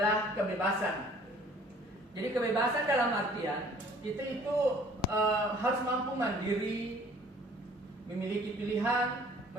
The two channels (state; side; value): normal; both; correlation 0.54